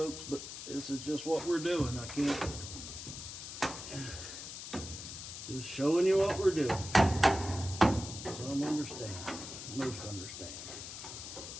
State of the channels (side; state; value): left; noise; hiss, 9 dB below the sound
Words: but this is just what we're doing. I can't. Just showing you what we're doing. Some understand, most understand.